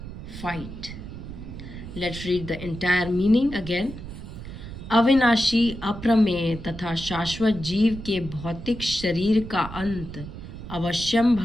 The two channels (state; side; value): noise; right; rumble, 11 dB below the sound